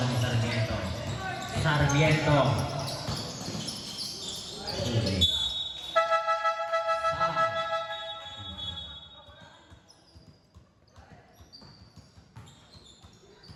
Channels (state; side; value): identical; both; correlation 1.00